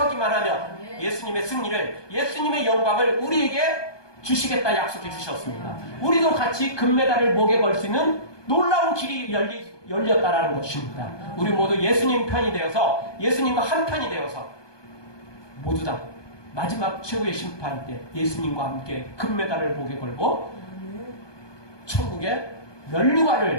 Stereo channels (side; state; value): right; late; 1.2 ms